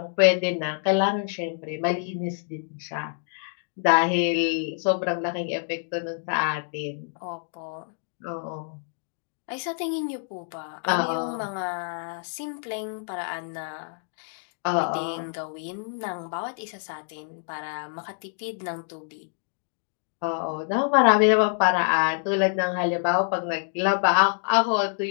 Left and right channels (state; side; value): silent; right; digital silence